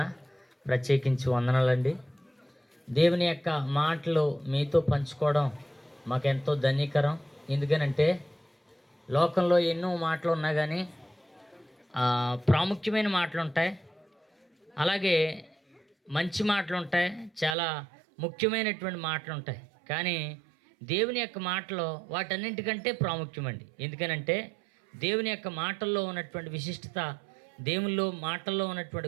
ప్రత్యేకించి వందనాలండి. దేవుని యొక్క మాటలు మీతో పంచుకోవడం మాకెంతో ధన్యకరం. ఎందుకనంటే లోకంలో ఎన్నో మాటలు ఉన్నా కానీ ప్రాముఖ్యమైన మాటలు ఉంటాయి, అలాగే మంచి మాటలు ఉంటాయి, చాలా ముఖ్యమైనటువంటి మాటలు ఉంటాయి. కానీ దేవుని యొక్క మాటలో వాటన్నింటికంటే ప్రాముఖ్యమండి. ఎందుకనంటే దేవుని యొక్క మాటల్లో ఉన్నటువంటి విశిష్టత, దేవునిలో మాటల్లో ఉన్నటువంటి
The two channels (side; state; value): left; drops out; at 17.6 s